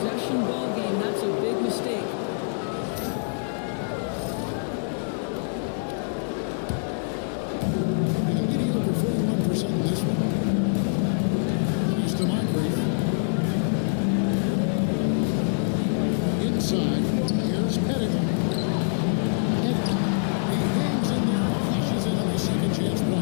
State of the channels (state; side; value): silent; right; 62 dB below the other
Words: ball game, that's a big mistake. In a mediocre 41% in this one. To Moncrief. Inside. Here's Pettit. Pettit. He hangs in there and cashes in on the second chance